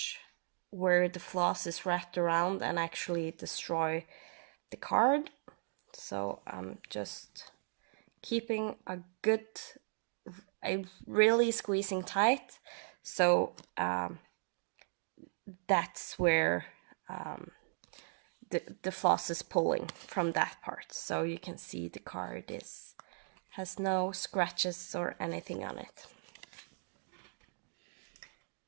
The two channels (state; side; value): silent; left; digital silence